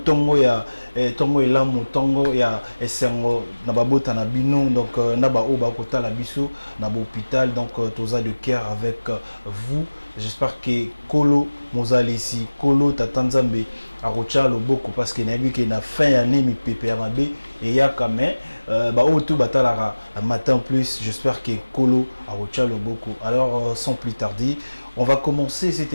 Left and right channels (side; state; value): both; inverted; correlation -1.00